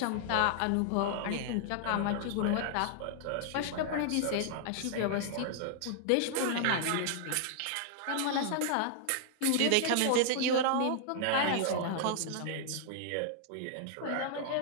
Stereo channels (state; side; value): different; both; correlation -0.01